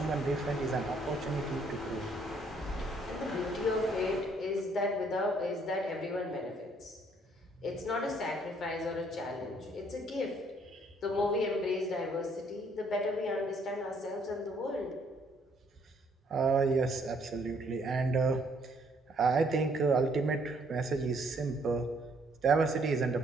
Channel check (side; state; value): both; normal; correlation 0.66